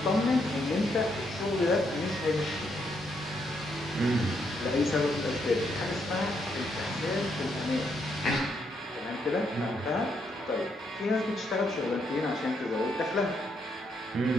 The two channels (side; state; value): both; normal; correlation 0.76